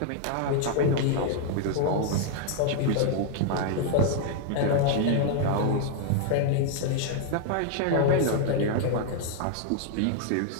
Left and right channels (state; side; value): different; both; correlation 0.00